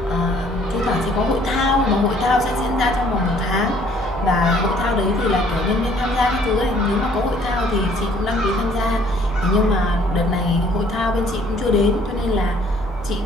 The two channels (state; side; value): normal; both; correlation 0.60